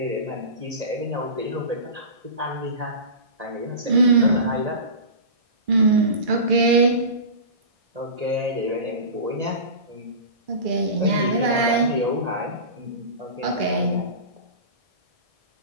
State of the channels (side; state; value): left; late; 1.6 ms